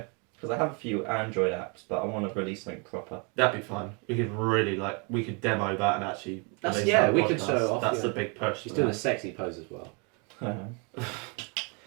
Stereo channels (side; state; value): left; quieter; 33.9 dB